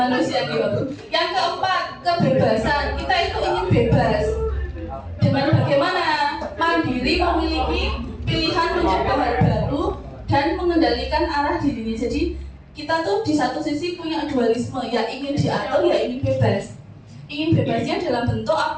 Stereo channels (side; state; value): both; identical; correlation 1.00